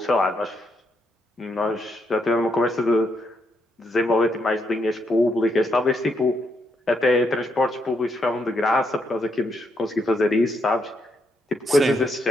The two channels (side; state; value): both; normal; correlation 0.78